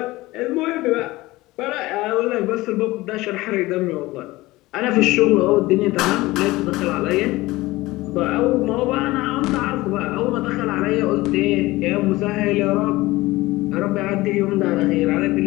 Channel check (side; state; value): right; quieter; 19.5 dB